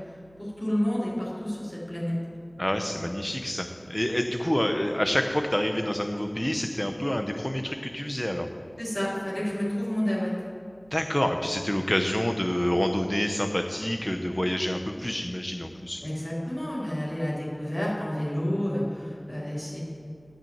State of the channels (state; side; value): noise; right; hum, 28 dB below the sound